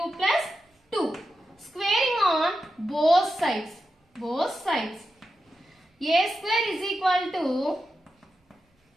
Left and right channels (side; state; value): both; normal; correlation 0.89